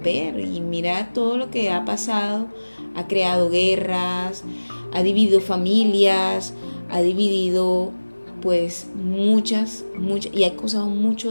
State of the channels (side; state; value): both; inverted; correlation -1.00